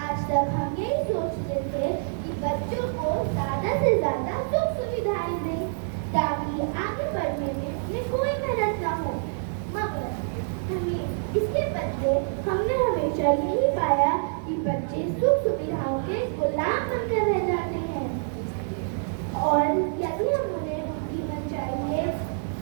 आज तक हम यही सोचते थे कि बच्चों को ज्यादा से ज्यादा सुख सुविधाएं दें ताकि आगे बढ़ने में उन्हें कोई मेहनत न हो, मगर हमें इसके बदले हमने हमेशा यही पाया कि बच्चे सुख सुविधाओं के गुलाम बनकर रह जाते हैं और यदि हम उन्हें उनकी मनचाही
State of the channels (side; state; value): left; silent; digital silence